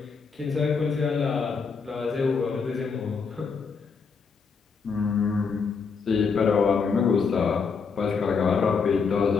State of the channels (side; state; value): right; quieter; 5.4 dB